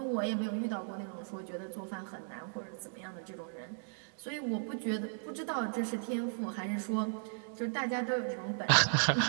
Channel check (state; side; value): silent; left; digital silence